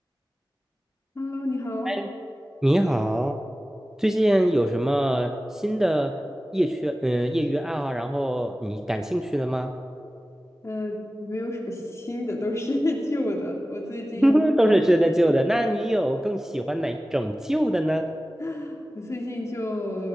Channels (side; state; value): both; normal; correlation 0.96